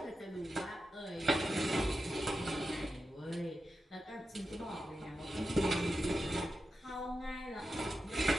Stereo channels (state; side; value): normal; both; correlation 0.90